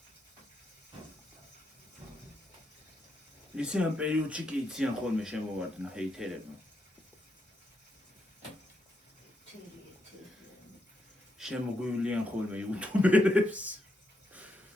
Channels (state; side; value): normal; both; correlation 0.81